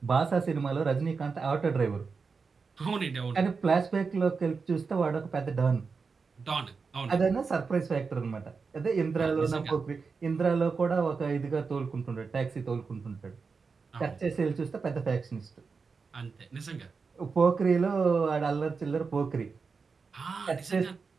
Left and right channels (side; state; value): left; quieter; 4.9 dB